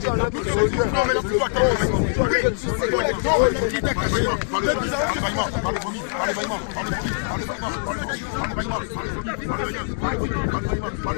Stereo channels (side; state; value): right; silent; digital silence